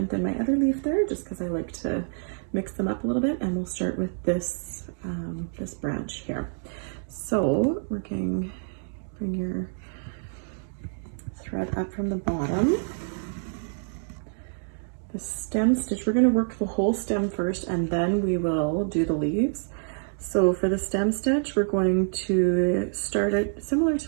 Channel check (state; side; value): silent; left; digital silence